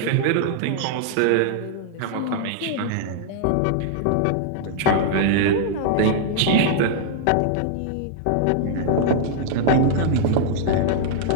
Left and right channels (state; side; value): different; both; correlation -0.01